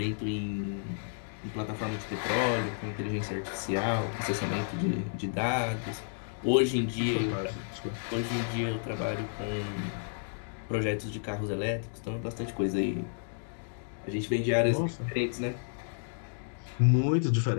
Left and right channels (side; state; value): right; silent; digital silence